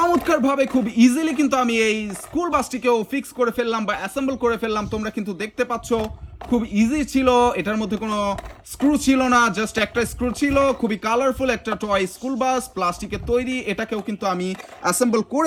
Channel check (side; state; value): both; identical; correlation 1.00